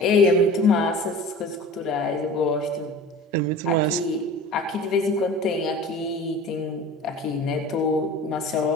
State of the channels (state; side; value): normal; both; correlation 0.39